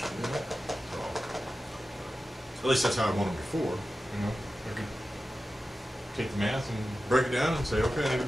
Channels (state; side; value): normal; both; correlation 0.93